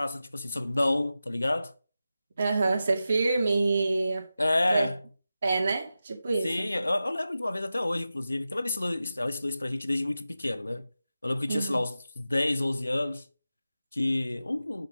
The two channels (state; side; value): inverted; both; correlation -0.93